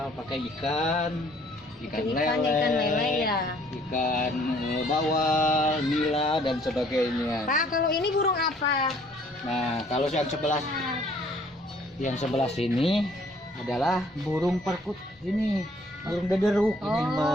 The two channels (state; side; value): normal; both; correlation 0.60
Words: pakai ikan lele ya. ikan bawal, nila dan sebagainya. Pak, kalau ini burung apa? Nah kalau yang sebelah sini adalah burung perkut, ini burung dederuk ini